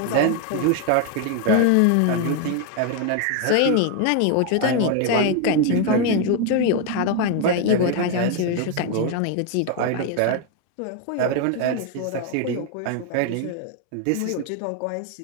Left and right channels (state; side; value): different; both; correlation 0.01